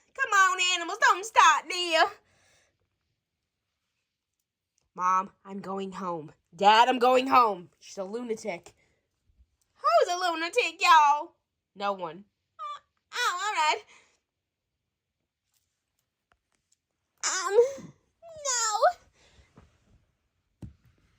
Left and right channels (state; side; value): identical; both; correlation 1.00